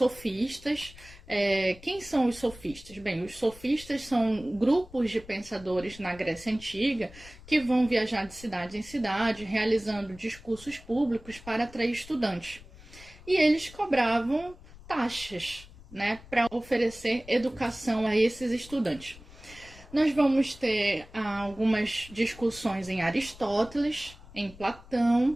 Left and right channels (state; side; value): noise; left; rumble, 20 dB below the sound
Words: Quem são os sofistas? Bem, os sofistas são grupos de pensadores na Grécia Antiga que vão viajar de cidade em cidade, realizando discursos públicos para atrair estudantes. E eles cobravam taxas, né, para oferecer educação a esses estudantes. Nós vamos ter algumas discussões em Aristóteles, em